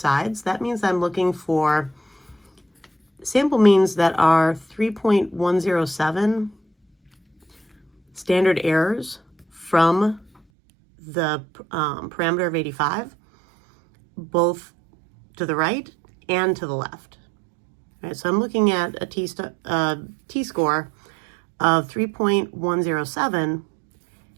that means I'm looking for sample means that are 3.107 standard errors from the parameter of 85, both to the right and to the left. All right, so I'm looking at a t-score of 3.107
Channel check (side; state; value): left; drops out; at 10.4 s